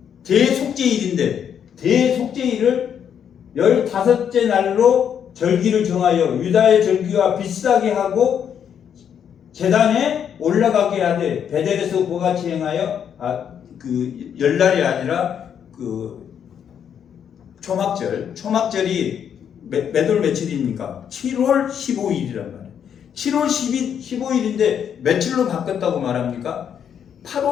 대속죄일인데 대속죄일을 15째 날로 절기를 정하여 유다의 절기와 비슷하게 하고 제단에 올라가게 하되 베델에서 그같이 행하여 그 열날이 아니라 그 초막절이 몇 월 며칠입니까? 7월 15일이란 말이에요. 7월 15일인데 며칠로 바꿨다고 말합니까?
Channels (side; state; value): right; quieter; 8.4 dB